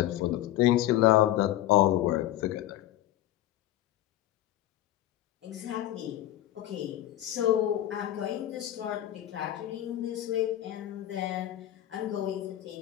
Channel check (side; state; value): right; quieter; 13.8 dB